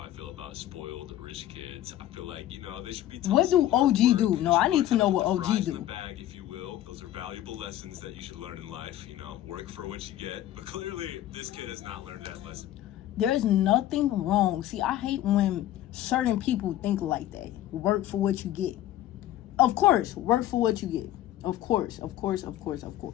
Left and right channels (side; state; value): right; quieter; 13.2 dB